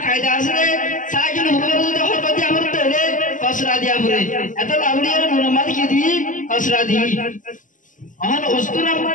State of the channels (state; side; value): late; right; 0.38 ms